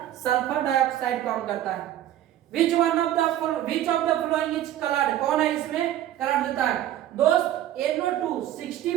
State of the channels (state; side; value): quieter; left; 12.4 dB